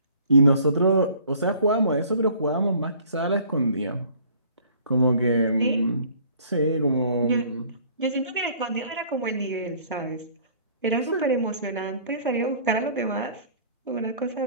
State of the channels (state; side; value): inverted; both; correlation -0.54